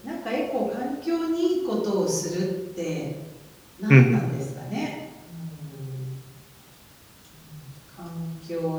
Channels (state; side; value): identical; both; correlation 1.00